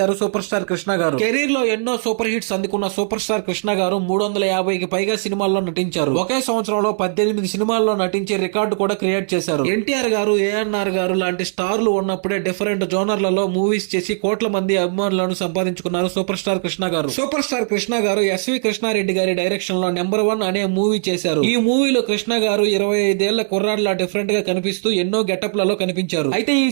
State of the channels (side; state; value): left; silent; 61 dB below the other